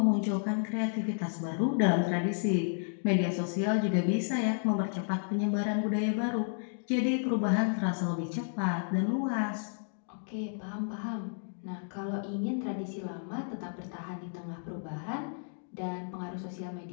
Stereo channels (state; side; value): silent; right; digital silence